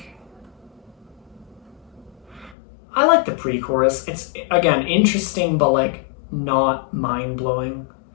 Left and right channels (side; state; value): right; drops out; at 2.6 s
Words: I like the pre-chorus. It's again interesting, but like not mind-blowing.